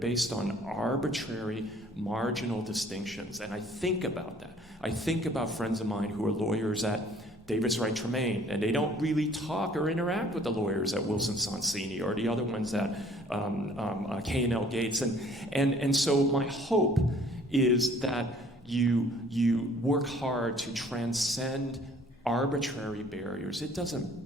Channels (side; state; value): both; normal; correlation 0.56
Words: on arbitrary, marginal distinctions. And I think about that. I think about friends of mine who are lawyers at Davis Wright Tremaine, and they don't really talk or interact with the lawyers at Wilson Sonsini or the other ones at K&L Gates. And so my hope is that you work hard to transcend arbitrary barriers. It